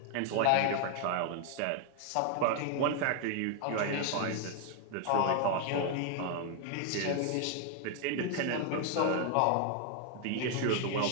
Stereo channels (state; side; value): different; both; correlation 0.01